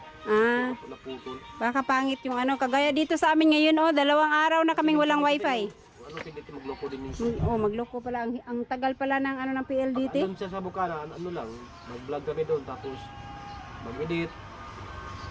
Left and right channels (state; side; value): identical; both; correlation 1.00